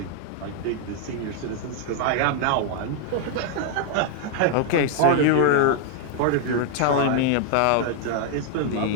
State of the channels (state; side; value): different; both; correlation 0.00